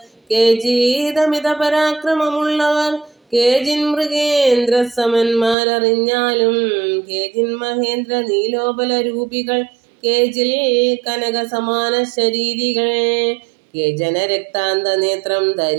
കേജീതമിത പരാക്രമമുള്ളവർ കേജിൻ മൃഗേന്ദ്ര സമന്മാരറിഞ്ഞാലും കേജിൻ മഹേന്ദ്ര നീലോപല രൂപികൾ കേജിൽ കനക സമാന ശരീരികൾ കേജന രക്താന്ത നേത്രം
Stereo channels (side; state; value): left; drops out; at 5.6 s